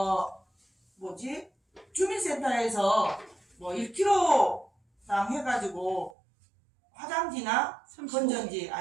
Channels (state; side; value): drops out; left; at 6.2 s